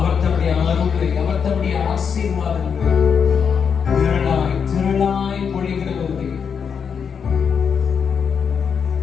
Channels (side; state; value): right; quieter; 6.7 dB